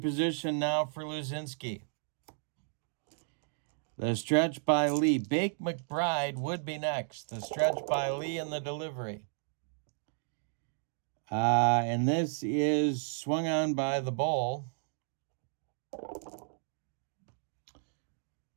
position now for Luzinski. The stretch by Lee. Bake McBride would be next. The stretch by Lee and the delivery. And this is swung on by the ball.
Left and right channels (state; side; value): silent; left; digital silence